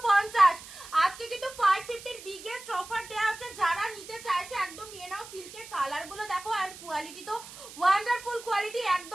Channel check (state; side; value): noise; right; hiss, 16 dB below the sound